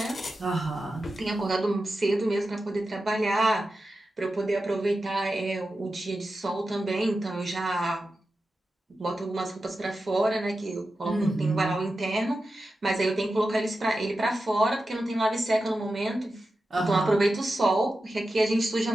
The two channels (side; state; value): both; normal; correlation 0.92